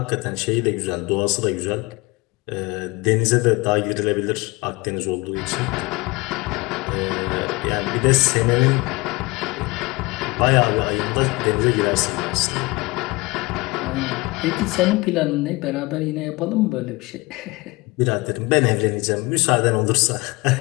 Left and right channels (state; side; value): quieter; right; 23.9 dB